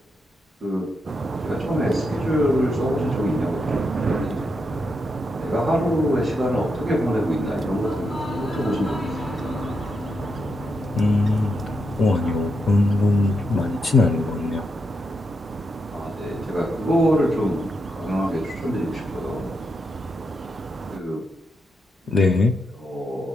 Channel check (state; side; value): normal; both; correlation 0.83